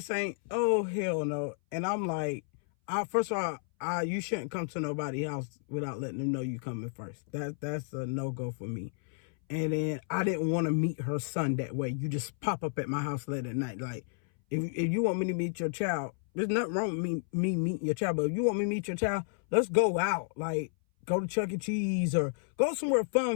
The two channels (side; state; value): right; silent; 57 dB below the other